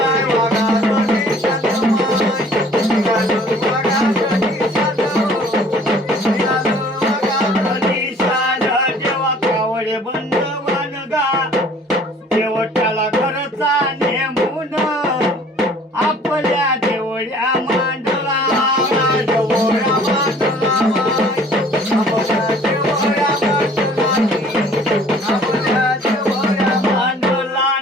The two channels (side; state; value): both; normal; correlation 0.53